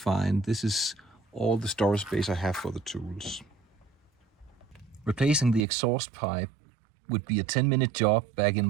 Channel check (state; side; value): drops out; left; at 5.7 s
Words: This is all the storage space I have for the tools. Replacing the exhaust pipe would be a 10-minute job back in